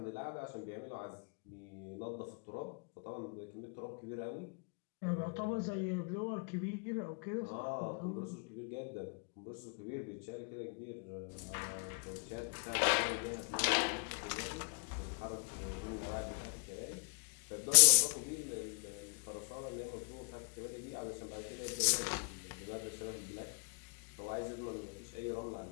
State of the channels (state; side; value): quieter; right; 38.5 dB